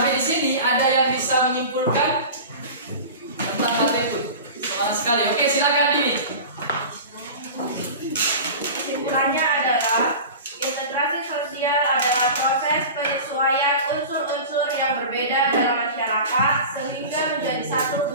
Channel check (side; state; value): both; inverted; correlation -0.34